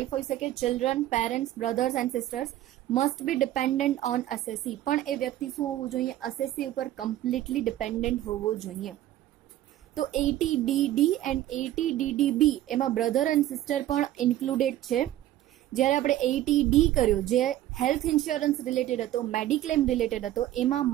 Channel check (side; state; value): left; quieter; 13.5 dB